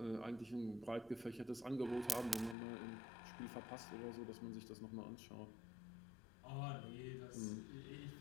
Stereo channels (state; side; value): drops out; right; at 2.6 s